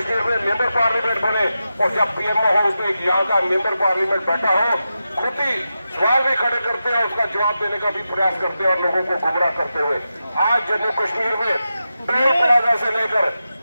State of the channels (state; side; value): inverted; both; correlation -0.90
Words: में मेंबर पार्लियामेंट बने और जब पीएमओ हो तो एक यहाँ का मेंबर पार्लियामेंट बैठा हो, खुद ही सवाल भी खड़े करते हैं, उसका जवाब देने का भी प्रयास करते हैं और लोगों को गुमराह करते हुए आज जम्मू कश्मीर में टोल प्लाजा से लेकर